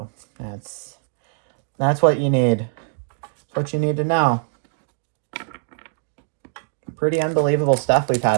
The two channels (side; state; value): left; silent; digital silence